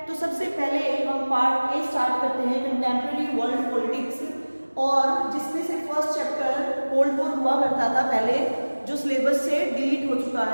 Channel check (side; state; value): both; inverted; correlation -1.00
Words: तो सबसे पहले हम पार्ट ए स्टार्ट करते हैं कंटेम्प्रेरी वर्ल्ड पॉलिटिक्स, और जिसमें से फर्स्ट चैप्टर कोल्ड वॉर हुआ करता था पहले, जो सिलेबस से डिलीट हो चुका